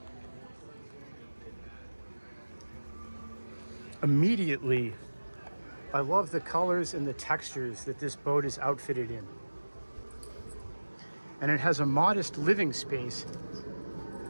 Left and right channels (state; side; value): inverted; both; correlation -1.00